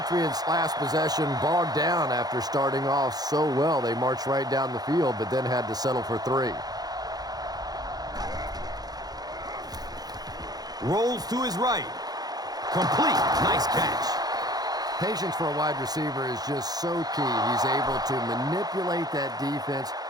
last possession bogged down after starting off so well. They marched right down the field, but then had to settle for 3. Rolls to his right. Complete. Nice catch. Patience for a wide receiver is just so key. He's able to manipulate that defense,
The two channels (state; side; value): late; left; 0.19 ms